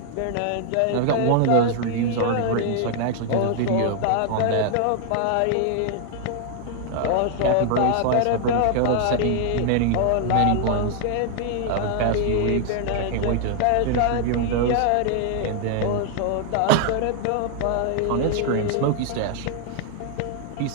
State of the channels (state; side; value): different; both; correlation 0.00